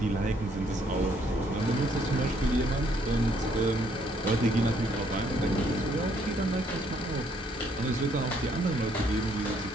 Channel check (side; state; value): both; normal; correlation 0.68